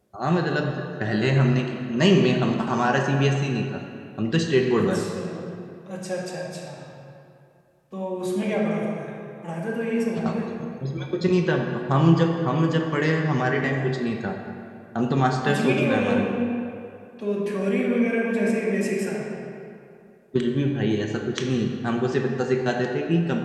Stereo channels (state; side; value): identical; both; correlation 1.00